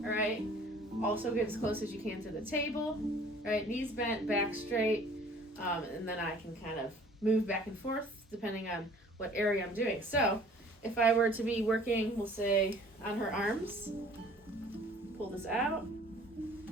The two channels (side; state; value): both; normal; correlation 0.51